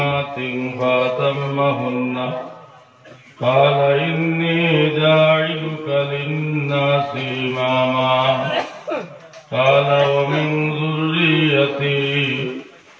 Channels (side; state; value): both; identical; correlation 1.00